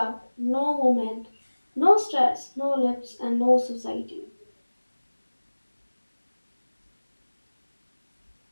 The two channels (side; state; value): both; inverted; correlation -1.00